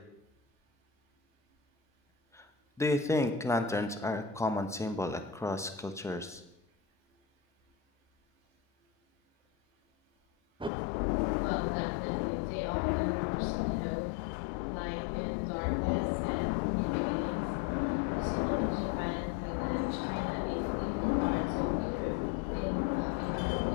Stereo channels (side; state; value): right; drops out; at 10.7 s